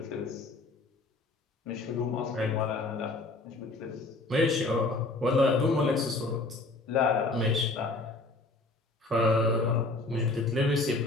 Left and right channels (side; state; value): right; quieter; 3.2 dB